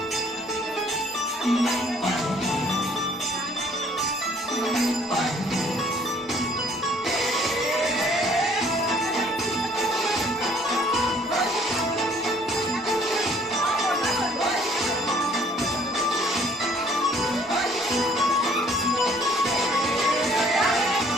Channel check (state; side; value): normal; both; correlation 0.59